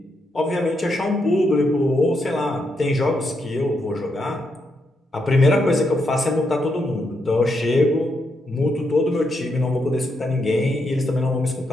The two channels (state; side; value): normal; both; correlation 0.80